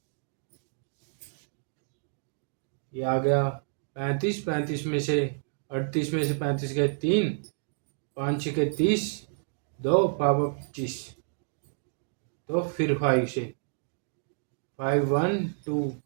ये आ गया 35। 35 में से 38 में से 35 गए 3, 5 6 के 30, 2 पावर 25। तो फिर 5 से 5 1 2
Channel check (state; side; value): silent; left; digital silence